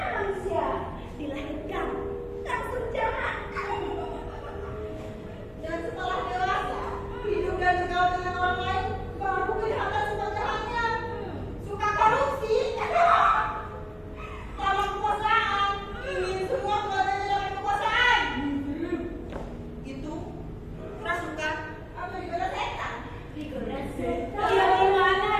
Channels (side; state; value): both; identical; correlation 1.00